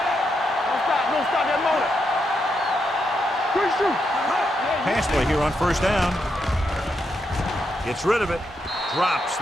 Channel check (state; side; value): normal; both; correlation 0.82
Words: Pass play here on first down. Gets rid of it. Drops